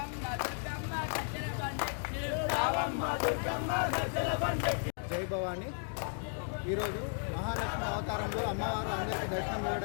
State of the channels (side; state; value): right; silent; 55 dB below the other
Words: దుర్గమ్మ గజ్జల బండెక్కి రావమ్మ దుర్గమ్మ గజ్జల బండెక్కి. జై భవాని. ఈరోజు మహాలక్ష్మి అవతారంలో అమ్మవారు అందరికీ దర్శనం